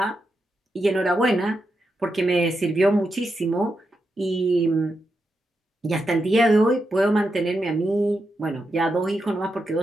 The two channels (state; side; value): normal; both; correlation 0.86